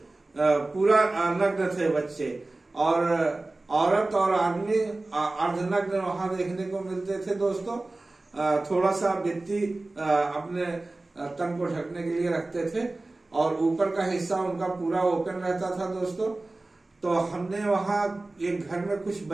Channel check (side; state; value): left; quieter; 3.0 dB